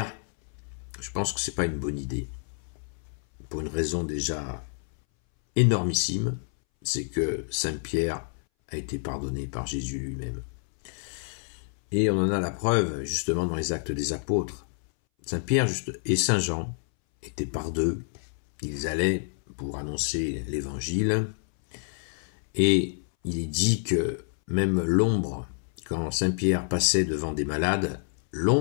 Je pense que ce n'est pas une bonne idée. Pour une raison déjà énormissime, c'est que Saint-Pierre a été pardonné par Jésus lui-même. Et on en a la preuve justement dans les actes des apôtres. Saint-Pierre et Saint-Jean étaient par 2. Ils allaient pour annoncer l'évangile. Et il est dit que même l'ombre, quand Saint-Pierre passait devant des malades,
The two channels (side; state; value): right; silent; 59 dB below the other